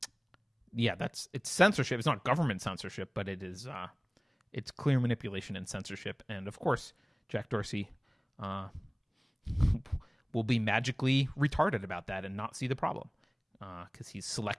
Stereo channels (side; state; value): both; identical; correlation 1.00